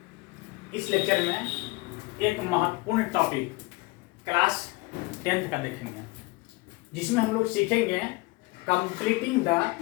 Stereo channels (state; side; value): quieter; right; 23.4 dB